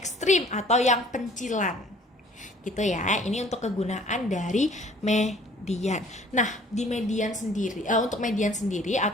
atau yang pencilan. Gitu ya. Ini untuk kegunaan dari median. Nah, di median sendiri, untuk median sendiri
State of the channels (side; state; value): both; normal; correlation 0.54